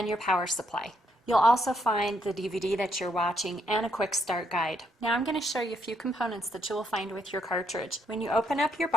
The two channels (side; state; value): both; normal; correlation 0.73